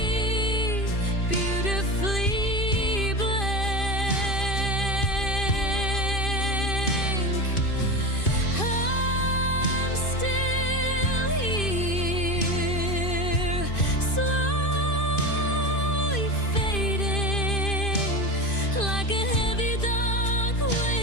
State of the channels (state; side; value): late; right; 2.5 ms